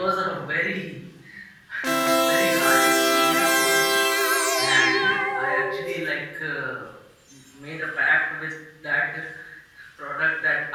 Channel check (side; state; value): both; identical; correlation 1.00